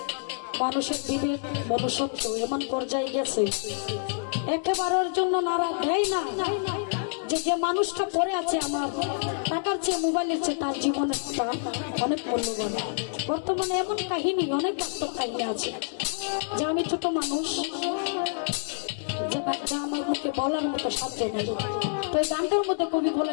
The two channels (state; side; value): silent; right; digital silence